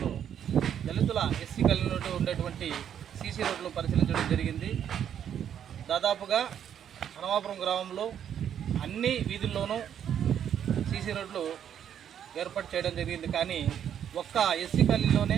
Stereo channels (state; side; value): quieter; left; 9.2 dB